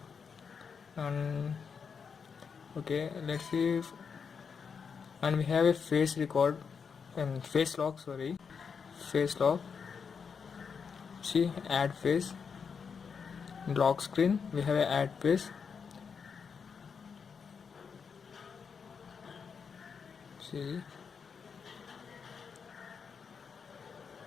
and okay, let's see and we have a face record and face lock, face lock. See, add face, lock screen, we have a add face. See,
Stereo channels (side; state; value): right; quieter; 6.1 dB